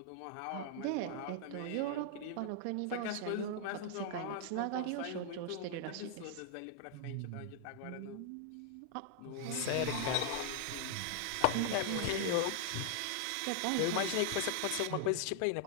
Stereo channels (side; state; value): both; different; correlation -0.01